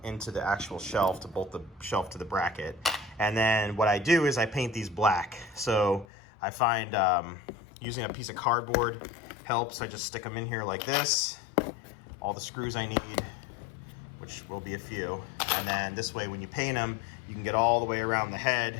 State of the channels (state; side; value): drops out; right; at 6.1 s